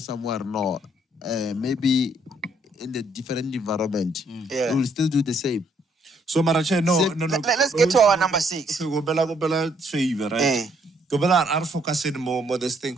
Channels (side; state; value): both; normal; correlation 0.69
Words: somewhere, no. Maybe in the different environment. Yeah. We will still do the same. So Marache, no. Let's get to our number 6. Go bela favor, right? Go bela are focusing more this thing